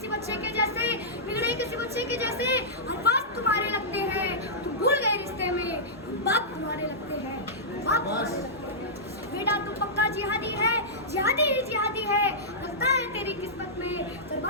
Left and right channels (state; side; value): normal; both; correlation -0.14